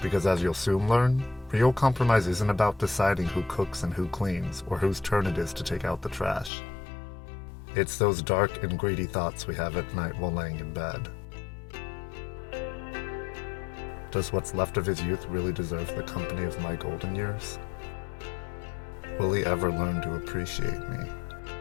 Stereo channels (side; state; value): right; drops out; at 6.5 s